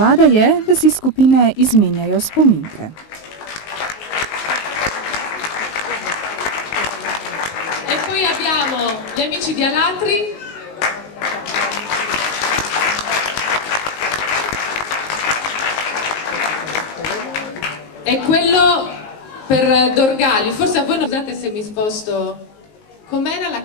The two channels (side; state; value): right; late; 19 ms